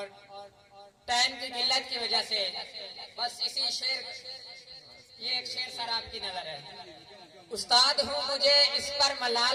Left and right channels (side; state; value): both; identical; correlation 1.00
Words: टाइम की किल्लत की वजह से बस इसी शेर, ये एक शेर सर आपकी नजर है। उस्ताद हूँ मुझे इस पर